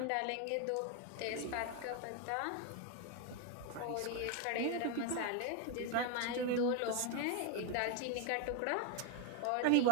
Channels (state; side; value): different; both; correlation 0.01